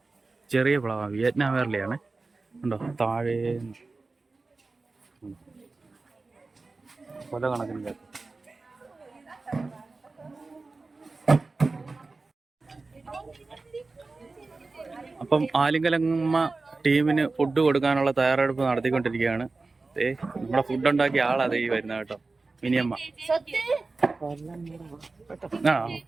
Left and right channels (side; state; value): left; quieter; 3.7 dB